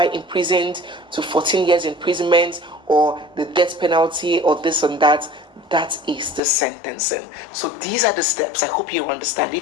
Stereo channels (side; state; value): right; drops out; at 6.4 s